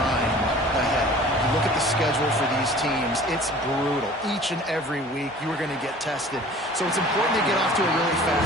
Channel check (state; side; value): normal; both; correlation 0.46